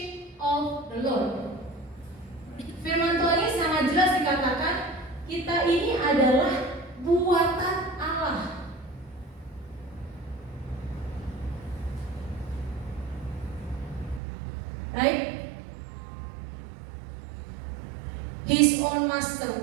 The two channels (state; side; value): drops out; left; at 14.2 s